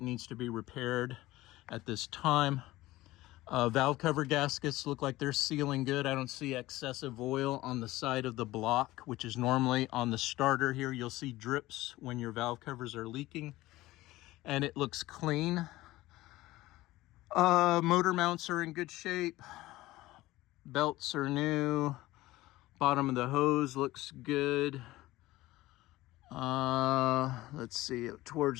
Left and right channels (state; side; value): quieter; right; 17.7 dB